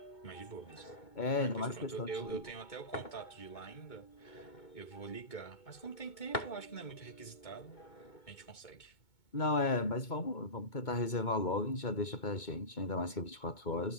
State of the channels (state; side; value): late; right; 2.2 ms